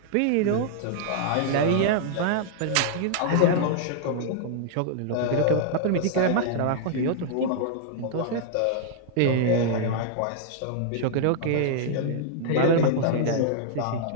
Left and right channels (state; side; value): different; both; correlation -0.01